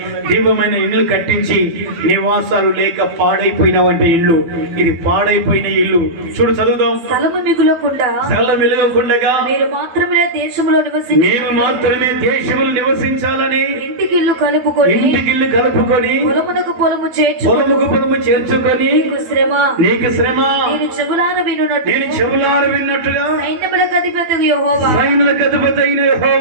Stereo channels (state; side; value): late; left; 12 ms